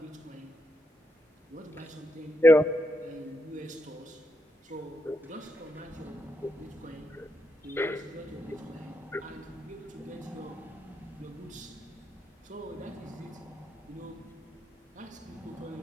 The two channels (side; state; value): both; normal; correlation 0.82